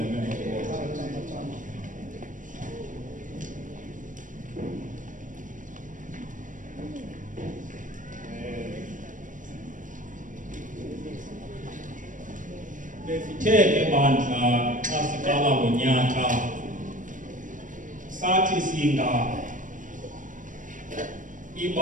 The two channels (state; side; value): late; left; 0.38 ms